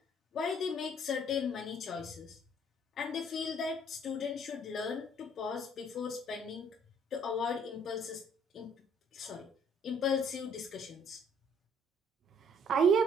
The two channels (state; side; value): normal; both; correlation 0.61